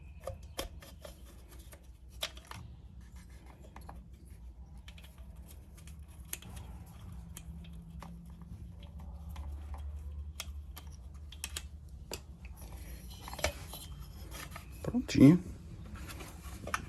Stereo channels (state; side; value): identical; both; correlation 1.00